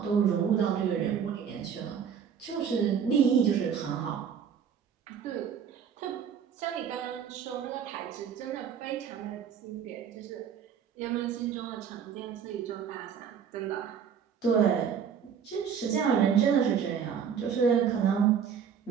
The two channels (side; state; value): left; quieter; 7.6 dB